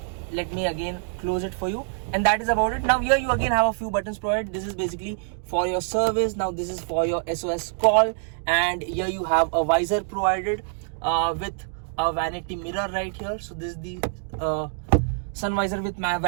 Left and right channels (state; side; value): silent; left; digital silence